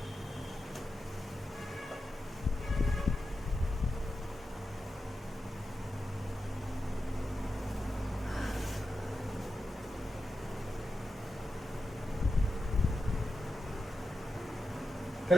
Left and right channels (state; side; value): normal; both; correlation 0.90